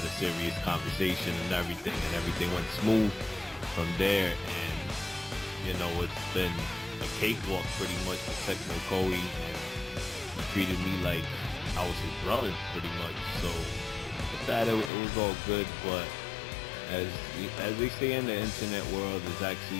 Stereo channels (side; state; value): right; drops out; at 14.9 s